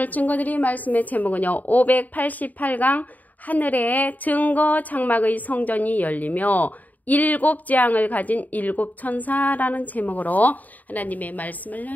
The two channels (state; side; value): late; right; 0.079 ms